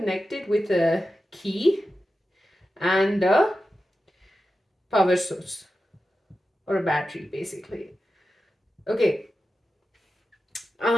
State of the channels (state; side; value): normal; both; correlation 0.92